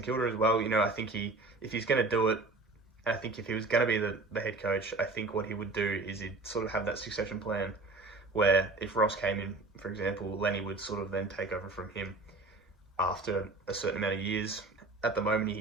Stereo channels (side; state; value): left; quieter; 3.3 dB